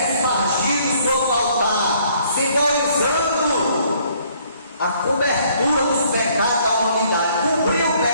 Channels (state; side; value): inverted; both; correlation -0.63